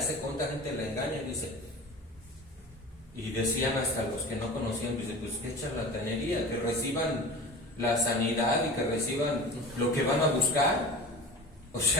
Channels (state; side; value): normal; both; correlation 0.36